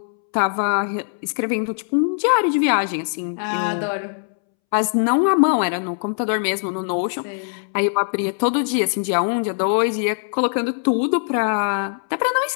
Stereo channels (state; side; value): silent; right; 65 dB below the other